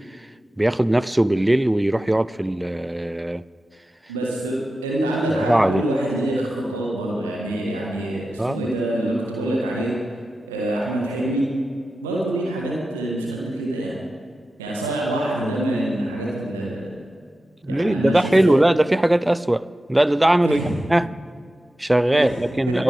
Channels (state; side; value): normal; both; correlation 0.93